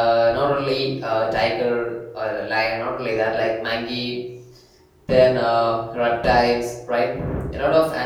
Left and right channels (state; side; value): identical; both; correlation 1.00